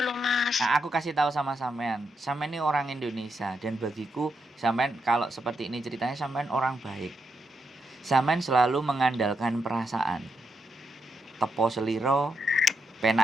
loh Mas. Nah, aku kasih tahu sama sampean ini orang Indonesia, dan bagiku sampean kalau seperti ini ceritanya, sampean orang baik. Sampean selalu mengandalkan perasaan, tepo seliro,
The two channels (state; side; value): normal; both; correlation 0.82